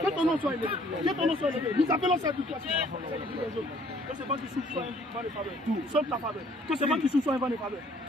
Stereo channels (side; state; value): both; normal; correlation 0.60